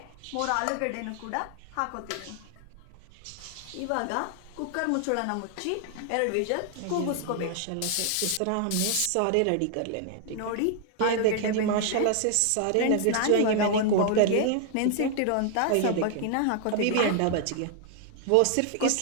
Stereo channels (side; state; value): both; different; correlation 0.00